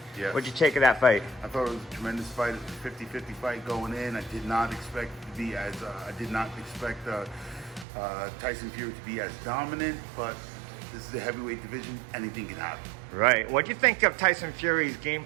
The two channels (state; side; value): drops out; left; at 7.9 s